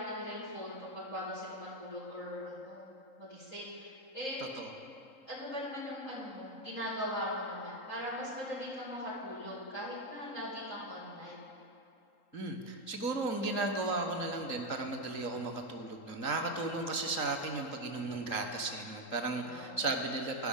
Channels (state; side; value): late; right; 3.8 ms